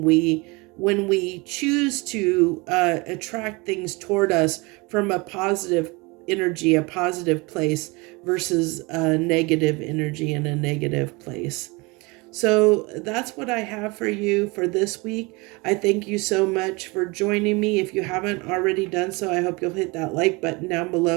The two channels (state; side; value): quieter; left; 26.2 dB